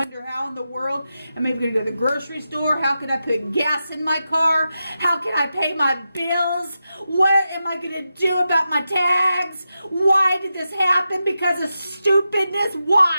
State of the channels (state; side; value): inverted; both; correlation -0.89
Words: how in the world am I going to go to the grocery store? How can I put gas in my car? How can I pay my bills? What am I going to do about my tags? Why did this happen? Because of stupidness?